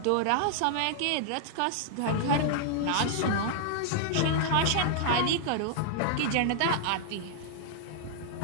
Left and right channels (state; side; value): different; both; correlation -0.01